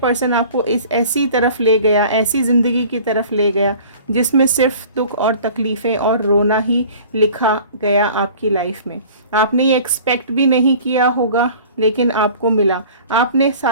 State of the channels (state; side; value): inverted; both; correlation -0.46